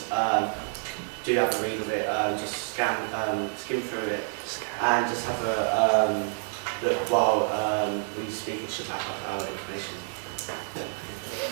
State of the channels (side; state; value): left; silent; 58 dB below the other